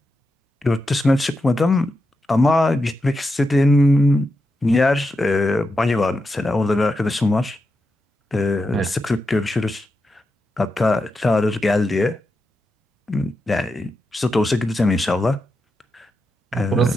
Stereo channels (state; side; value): normal; both; correlation 0.87